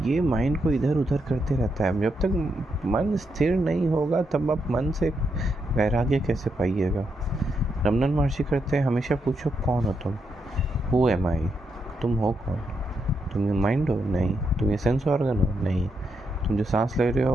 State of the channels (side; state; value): both; normal; correlation 0.81